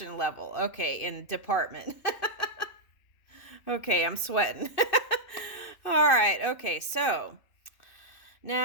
level. Okay, in department. Okay, I'm sweating. All right. Okay, so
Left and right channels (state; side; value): late; right; 2.6 ms